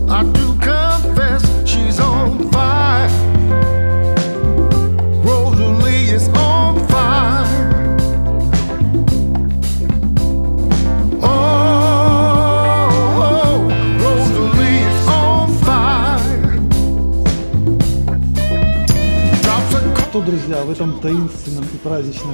I do confess she's on fire. Rosalie is on fire. Oh, Rosalie is on fire. Drops a Что, друзья, в этом таинственном и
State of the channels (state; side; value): inverted; both; correlation -1.00